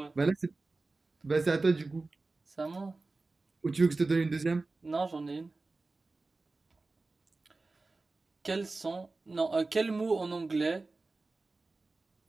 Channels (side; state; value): left; quieter; 3.4 dB